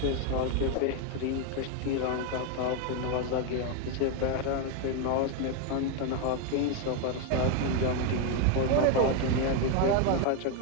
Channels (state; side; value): different; both; correlation 0.01